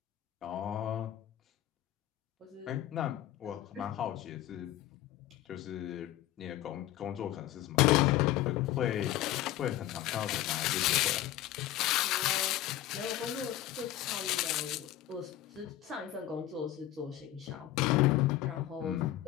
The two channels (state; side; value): quieter; right; 13.7 dB